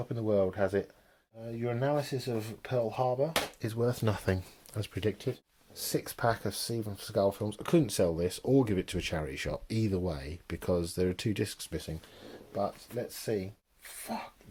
in the world has it. Your analysis of Pearl Harbor is worth nothing, as predicted. 6-pack of Steven Seagal films. I couldn't sell this or give it to a charity shop, either way, because there are 2 discs missing. But let's see. Fuck,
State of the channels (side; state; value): both; identical; correlation 1.00